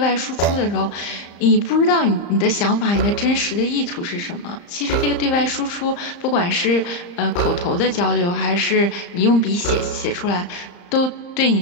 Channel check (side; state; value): right; late; 35 ms